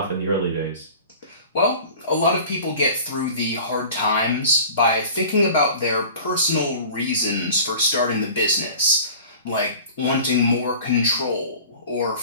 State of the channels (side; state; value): both; inverted; correlation -0.42